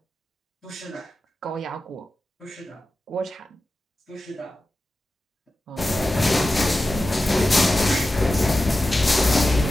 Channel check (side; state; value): both; normal; correlation 0.93